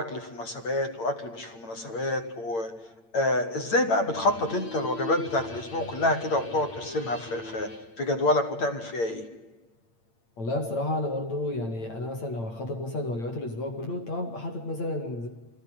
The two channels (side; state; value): right; late; 8.8 ms